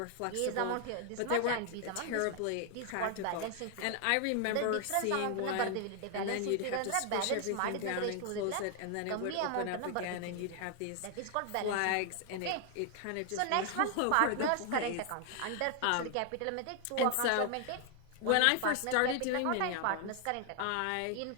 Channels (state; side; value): different; both; correlation 0.00